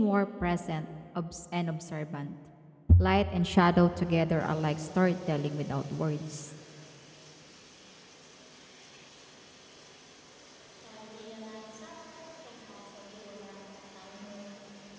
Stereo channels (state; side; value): identical; both; correlation 1.00